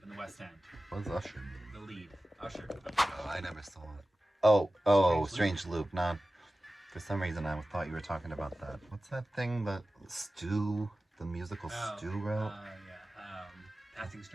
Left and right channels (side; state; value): both; normal; correlation 0.95